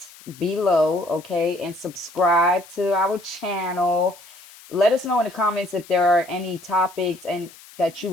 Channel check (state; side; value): noise; left; hiss, 21 dB below the sound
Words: below, okay, and subscribe to our channel. Let us know in the comments if there are any topics and that you